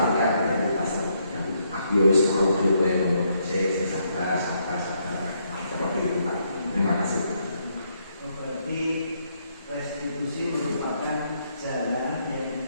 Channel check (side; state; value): both; inverted; correlation -0.74